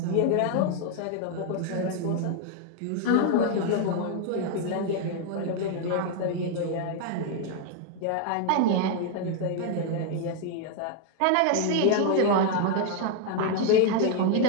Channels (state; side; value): different; both; correlation 0.00